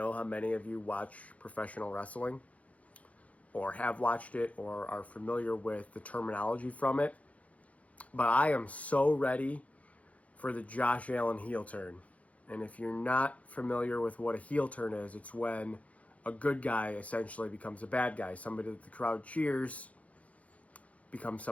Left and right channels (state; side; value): late; right; 0.067 ms